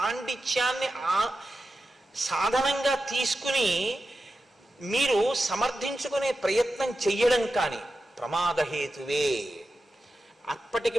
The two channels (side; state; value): both; normal; correlation 0.92